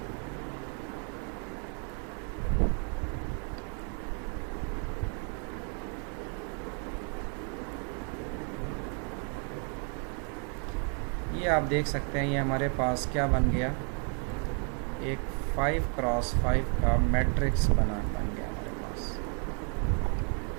ये आप देख सकते हैं, ये हमारे पास क्या बन गया? एक 5x5 का मैट्रिक्स बन गया हमारे पास।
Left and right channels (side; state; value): left; quieter; 39.9 dB